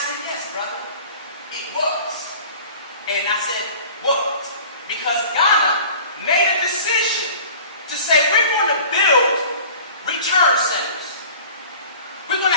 yes, brother, it was. And I said, was. Because Ghana made a decision to say, we're going to build return centers. We're going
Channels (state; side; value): inverted; both; correlation -0.44